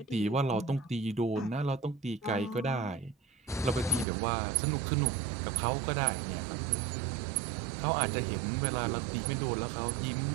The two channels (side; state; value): left; drops out; at 4.0 s